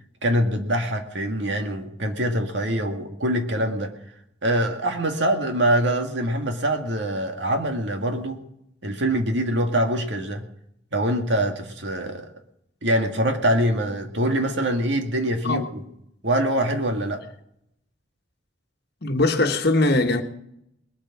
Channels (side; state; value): both; normal; correlation 0.14